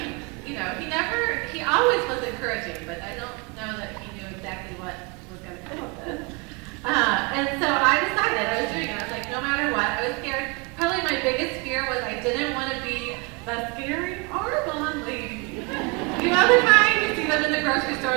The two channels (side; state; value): left; quieter; 28.1 dB